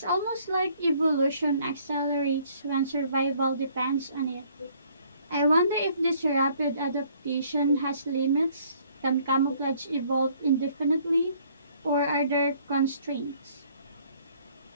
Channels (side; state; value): both; inverted; correlation -0.62